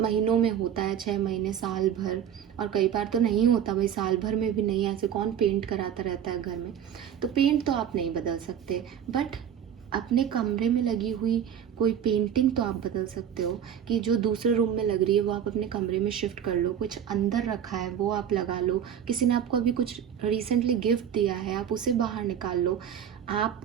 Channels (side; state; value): left; quieter; 9.1 dB